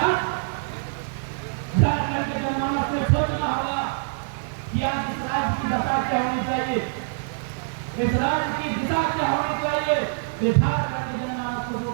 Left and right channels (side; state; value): left; silent; digital silence